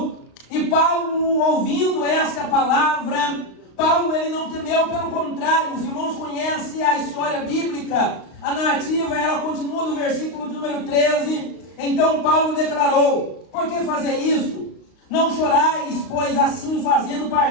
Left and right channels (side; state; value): right; late; 35 ms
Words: E Paulo, ouvindo esta palavra, Paulo ele não temeu, pelo contrário, os irmãos conhecem a história bíblica, a narrativa, ela continua no versículo de número 13. Então Paulo declarou: por que fazer isto? Não chorais, pois assim fazendo